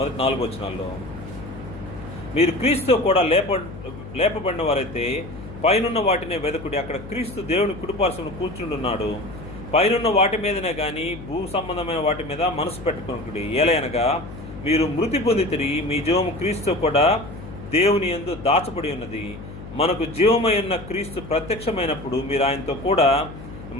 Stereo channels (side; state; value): left; noise; hum, 13 dB below the sound